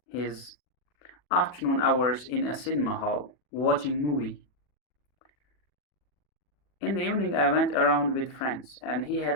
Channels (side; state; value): right; late; 40 ms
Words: his afternoon hours in a cinema hall watching movie. In the evening I went around with friends and he